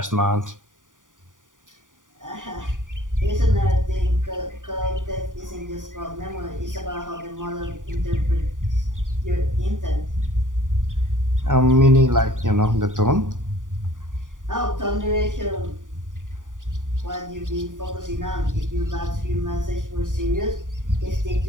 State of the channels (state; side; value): late; left; 0.88 ms